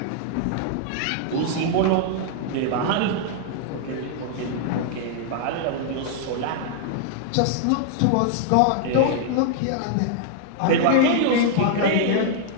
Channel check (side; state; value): both; different; correlation -0.01